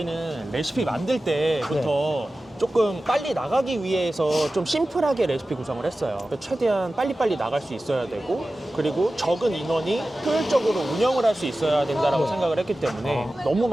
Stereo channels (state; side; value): normal; both; correlation 0.95